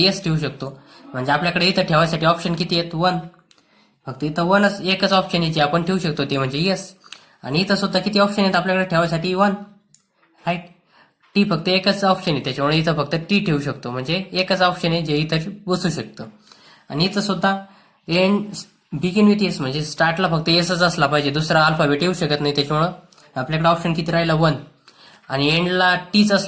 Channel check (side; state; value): both; identical; correlation 1.00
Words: ठेवू शकतो. म्हणजे आपल्याकडे इथं ठेवायसाठी ऑप्शन किती आहेत, 1. फक्त इथं एकच ऑप्शन याची आपण ठेवू शकतो ते म्हणजे येस. आणि इथं सुद्धा किती ऑप्शन आहेत आपल्याकडे ठेवायसाठी, 1. राईट. टी फक्त एकच ऑप्शन आहे, त्याच्यामुळे इथं फक्त टी ठेवू शकतो, म्हणजे एकच ऑप्शन आहे जे इथं बसू शकतं. आणि इथं सुद्धा एंड बिगिन विथ एस म्हणजे स्टार्टला फक्त एसच असला पाहिजे, दुसरा अल्फाबेट येऊ शकत नाही. त्याच्यामुळं आपल्याकडे ऑप्शन किती राहिला, 1. आणि एंडला टीच